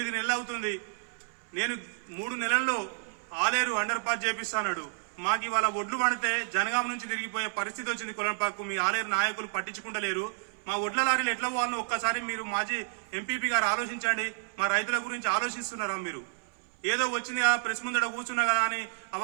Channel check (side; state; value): left; silent; 58 dB below the other